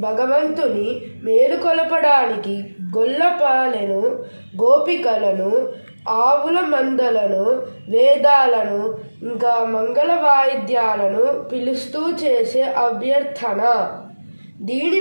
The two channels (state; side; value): inverted; both; correlation -1.00